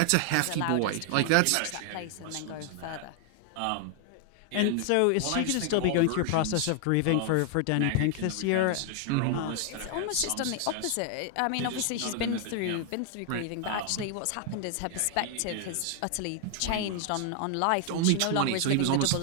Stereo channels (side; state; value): both; different; correlation 0.00